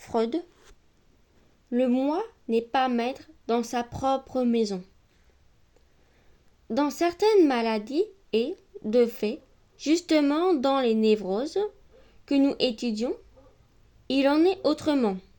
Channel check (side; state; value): both; identical; correlation 1.00